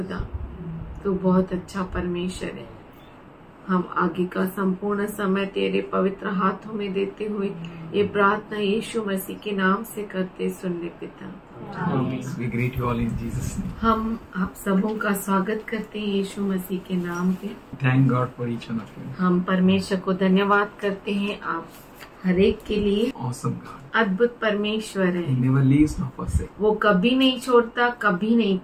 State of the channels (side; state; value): both; identical; correlation 1.00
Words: तो बहुत अच्छा परमेश्वर है। हम आगे का संपूर्ण समय तेरे पवित्र हाथों में देते हुए ये प्रार्थना यीशु मसीह के नाम से करते सुन ले पिता। We greet you all in Jesus' name. हम आप सबों का स्वागत करते हैं यीशु मसीह के नाम पे। Thank God for each one of you. हम परमेश्वर को धन्यवाद करते हैं आप हर एक के लिए। Awesome God. अद्भुत परमेश्वर है। He never leaves nor forsakes. वो कभी नहीं छोड़ता, कभी नहीं